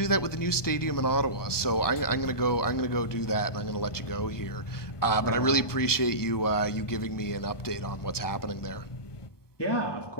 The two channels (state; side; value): late; right; 1.2 ms